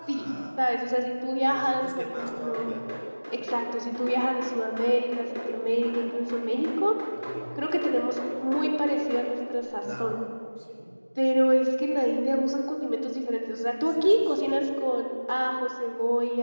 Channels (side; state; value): both; inverted; correlation -1.00